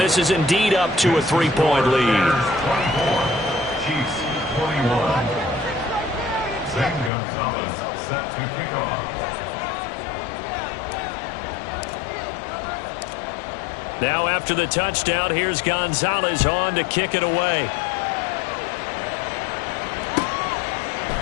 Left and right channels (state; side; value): drops out; right; at 7.1 s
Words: is indeed up to a 3-point lead. 24, Chiefs 21. Zane Gonzalez set to kick off. Now after the touchdown, here's Gonzalez on to kick it away.